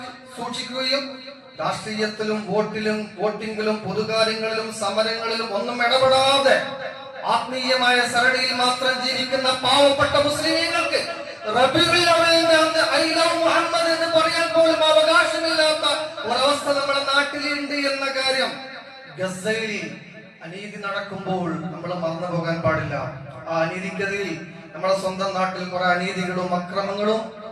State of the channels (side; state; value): both; identical; correlation 1.00